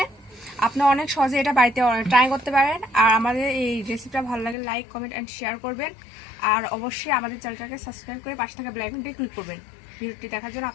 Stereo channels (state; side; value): drops out; right; at 4.5 s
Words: আপনি অনেক সহজে এটা বাড়িতে ট্রাই করতে পারেন। আর আমাদের এই রেসিপিটা ভালো লাগে লাইক কমেন্ট অ্যান্ড শেয়ার করবেন। আর অবশ্যই আমাদের চ্যানেলটাকে সাবস্ক্রাইব করে পাশে থাকা বেল আইকনটি ক্লিক করবেন। ভিডিওটি দেখার জন্য